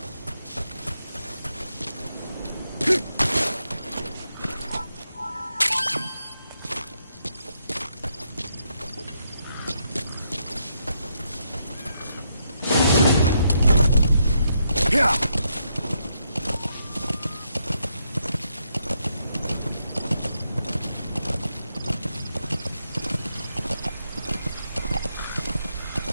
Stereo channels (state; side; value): inverted; both; correlation -0.79